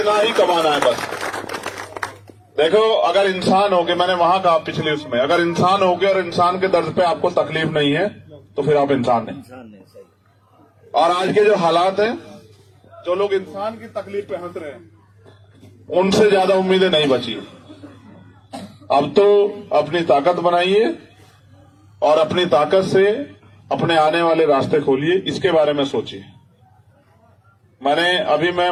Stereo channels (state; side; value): identical; both; correlation 1.00